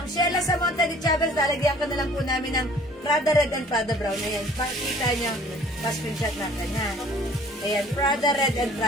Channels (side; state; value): both; normal; correlation 0.53